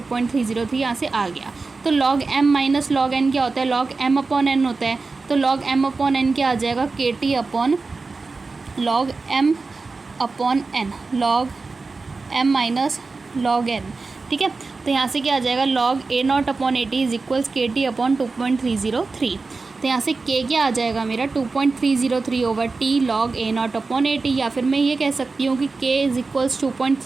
यहाँ से आ गया। तो log M minus log N क्या होता है, log M अपॉन N होता है। तो log M अपॉन N क्या आ जाएगा, KT upon log M upon N, log M minus log N, ठीक है। तो यहाँ से क्या आ जाएगा, log A0 upon AT is equals KT upon 2.303। तो यहाँ से K क्या आ जाएगा मेरा 2.303 over T log A0 upon AT, या फिर मैं ये कह सकती हूँ कि K is equals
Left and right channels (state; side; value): quieter; left; 4.0 dB